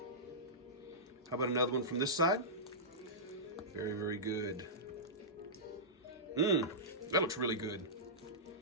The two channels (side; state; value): both; normal; correlation -0.16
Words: How about another one from this side? Very, very good. That looks really good.